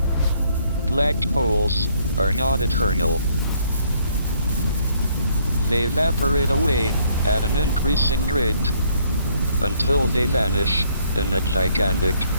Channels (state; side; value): inverted; both; correlation -0.65